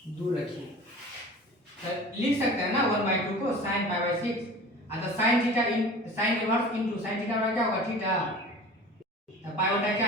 दूर रखिए। तो लिख सकते हैं ना 1/2 को sin π/6, तो sin theta sin inverse into sin theta का क्या होगा थीटा, तो पाई बटा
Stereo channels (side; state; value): both; normal; correlation 0.39